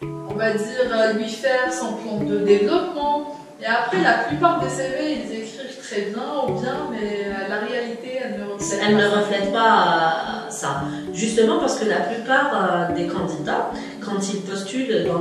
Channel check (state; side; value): identical; both; correlation 1.00